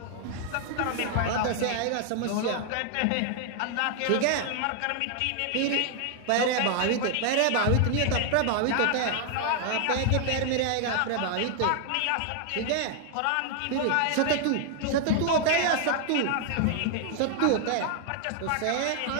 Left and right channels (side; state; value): both; different; correlation 0.00